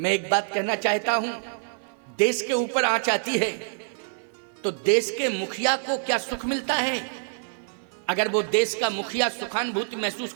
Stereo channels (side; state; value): left; silent; 61 dB below the other